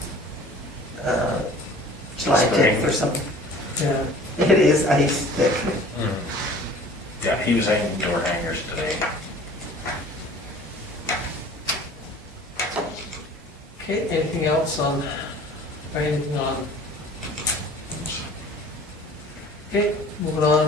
July Spring. 10th or something. Yeah, It is ice thick. Yeah, he was hanging door hangers today. okay, anything else on, or anything on? Okay, moving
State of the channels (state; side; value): normal; both; correlation 0.47